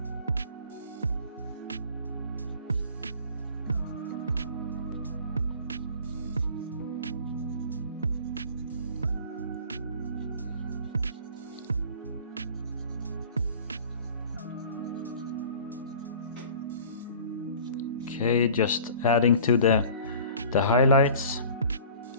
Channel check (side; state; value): both; inverted; correlation -0.45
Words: Okay, just adding to the highlights.